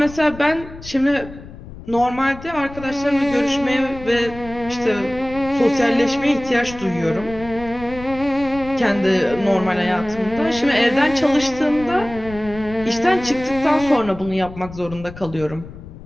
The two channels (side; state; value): left; noise; rumble, 15 dB below the sound